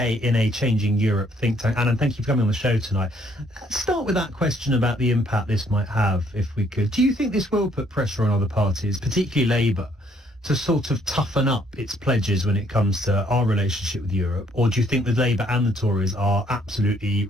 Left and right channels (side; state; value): both; normal; correlation 0.66